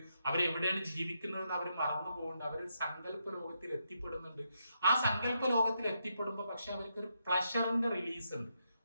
അവരെവിടെയാണ് ജീവിക്കുന്നതെന്ന് അവർ മറന്നു പോകുന്നുണ്ട്, അവർ സങ്കല്പ ലോകത്തിൽ എത്തിപ്പെടുന്നുണ്ട്. ആ സങ്കല്പ ലോകത്തിൽ എത്തിപ്പെടുമ്പോൾ പക്ഷെ അവർക്ക് ഒരു പ്ലഷറിന്റെ റിലീസ് ഉണ്ട്,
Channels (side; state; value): both; inverted; correlation -0.81